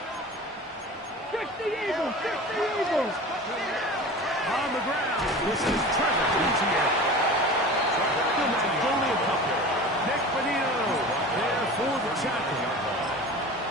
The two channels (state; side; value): normal; both; correlation 0.36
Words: 60 Eagles, 60 Eagles. On the ground, this is Trevor Etienne. Still not only a couple. Nick Benito there for the tackle.